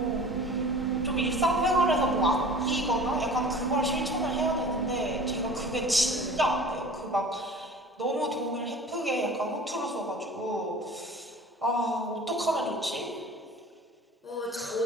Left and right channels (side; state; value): both; normal; correlation 0.42